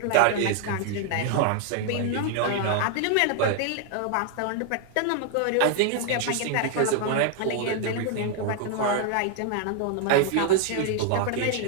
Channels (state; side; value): different; both; correlation 0.00